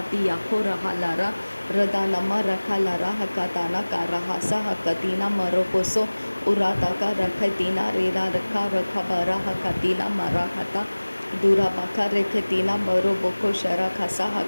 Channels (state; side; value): inverted; both; correlation -1.00